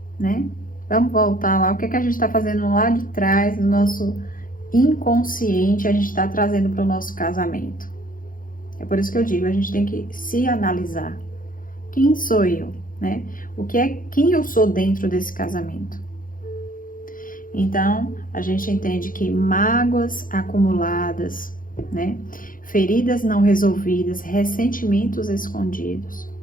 né? Vamos voltar lá. O que a gente está fazendo lá de trás, do nosso inconsciente, a gente está trazendo para o nosso casamento. É por isso que eu digo, a gente tem que se analisar. Quem sou eu, né? Quem eu sou dentro desse casamento? Então, a gente entende que mágoas acumuladas, né? Feridas não resolvidas, ressentimentos escondidos,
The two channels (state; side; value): late; right; 0.40 ms